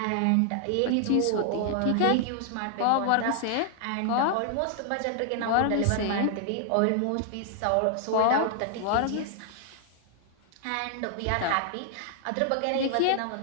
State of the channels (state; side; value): different; both; correlation 0.00